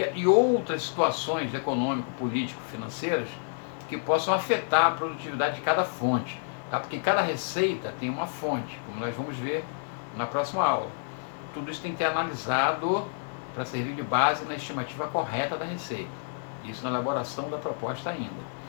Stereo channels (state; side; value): silent; right; 59 dB below the other